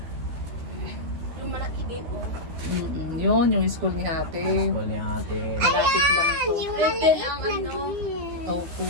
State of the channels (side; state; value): left; late; 13 ms